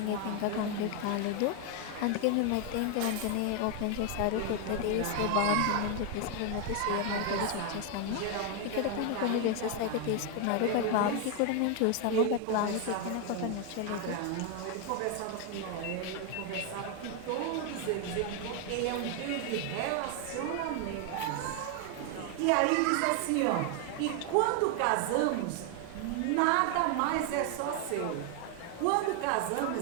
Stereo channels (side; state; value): both; different; correlation 0.01